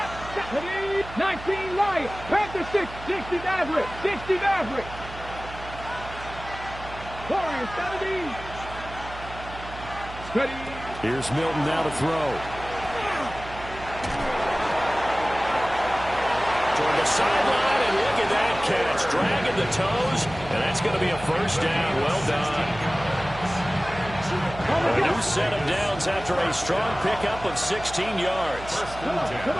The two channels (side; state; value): right; noise; hum, 13 dB below the sound